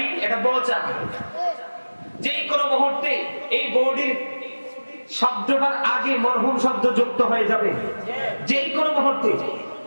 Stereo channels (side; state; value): both; inverted; correlation -1.00